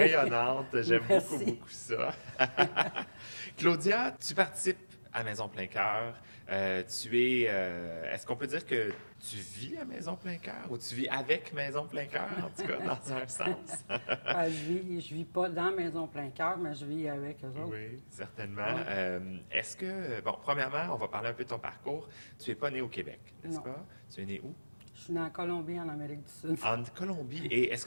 j'aime beaucoup, Merci. beaucoup ça. Claudia, tu participes à Maison Plein Cœur. Est-ce qu'on peut dire que tu vis à Maison Plein Cœur ou tu vis avec Maison Plein Cœur, en tout cas, dans un sens? Je vis pas dans Maison Plein Cœur, mais je vis avec eux autres. Oui, certainement. Ouais. Est-ce que, bon, premièrement, on va parler un peu de ton parcours. Tu n'es pas né au Québec, n'est-ce Non. pas? Tu es né où? Je suis née en Colombie, en Amérique du Sud. En Colombie. Et est-ce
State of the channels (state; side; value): inverted; both; correlation -1.00